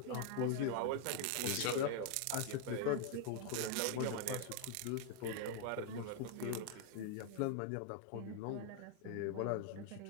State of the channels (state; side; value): different; both; correlation 0.00